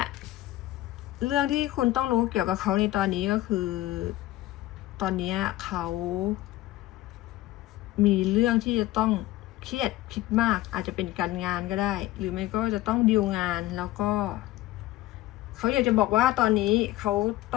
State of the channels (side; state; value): right; quieter; 16.1 dB